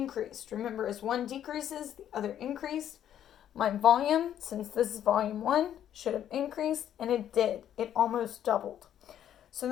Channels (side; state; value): right; quieter; 10.5 dB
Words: Remember, as one decreases, the other increased. My volume, since this is volume 1, should have increased, and it did. It almost doubled. So